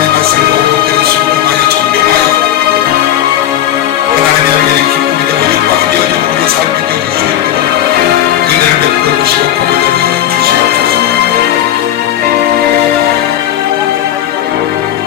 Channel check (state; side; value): quieter; right; 11.5 dB